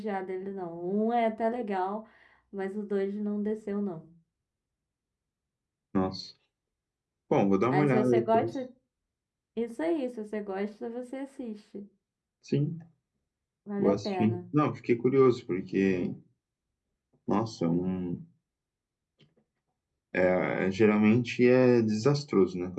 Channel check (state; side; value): identical; both; correlation 1.00